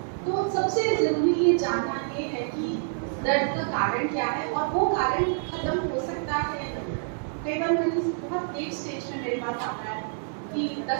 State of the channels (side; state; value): left; silent; 60 dB below the other